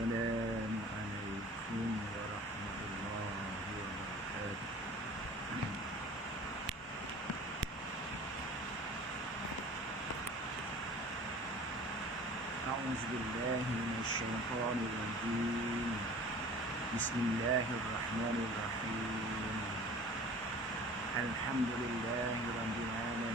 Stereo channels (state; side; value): normal; both; correlation 0.44